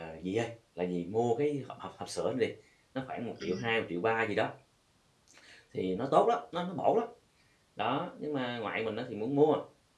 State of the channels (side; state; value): both; identical; correlation 1.00